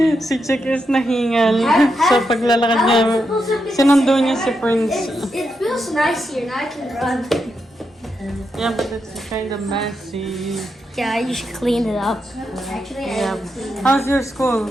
Si Chick is nahingal. So paglalakad niya, sinundo niya si Prince. It feels nice here. Now I can run. Yeah, but it's kind of messy. Yeah, you should clean it up. Actually, Yeah. How's your school?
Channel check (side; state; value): both; normal; correlation 0.84